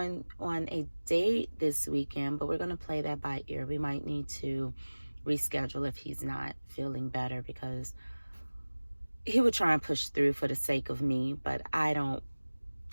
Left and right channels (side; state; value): both; inverted; correlation -1.00